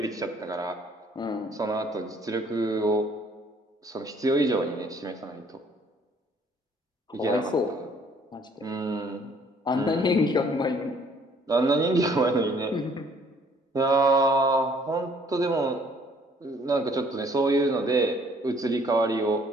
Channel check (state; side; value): normal; both; correlation 0.60